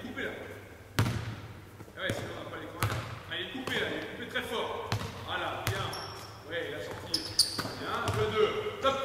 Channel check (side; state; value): both; identical; correlation 1.00